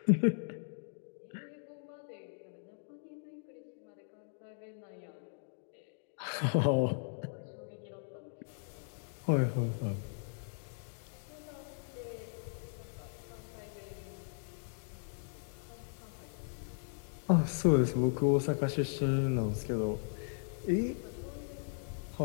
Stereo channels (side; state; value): right; silent; digital silence